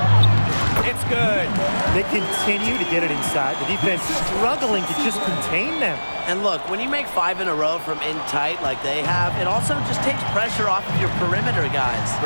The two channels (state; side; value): inverted; both; correlation -1.00